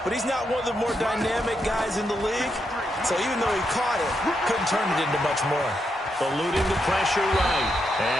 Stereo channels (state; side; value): normal; both; correlation 0.82